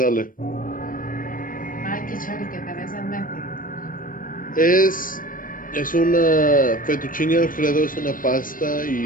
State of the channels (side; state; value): right; late; 0.40 ms